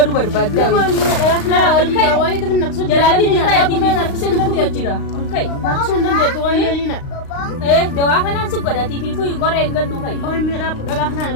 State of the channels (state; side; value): late; right; 35 ms